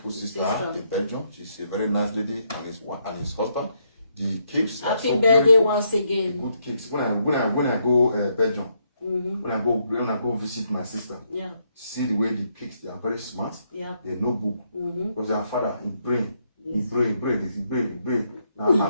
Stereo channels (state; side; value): inverted; both; correlation -0.77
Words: sister in Belgium. She's a very nice lady and his husband. The cakes happy are so birthday beautiful. Once again. Good cakes. When I go Belgium, when I go visit my sister, see the way the kids, they are very smart. They know book because their father in brain. Now